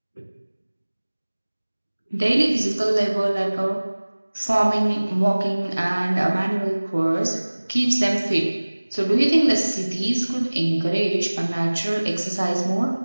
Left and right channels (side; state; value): both; inverted; correlation -1.00